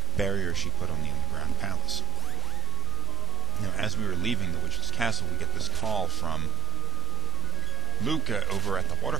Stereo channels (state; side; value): noise; right; hum, 10 dB below the sound